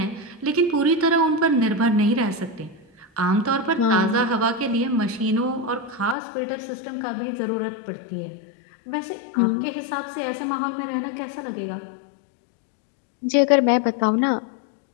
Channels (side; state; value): right; drops out; at 6.2 s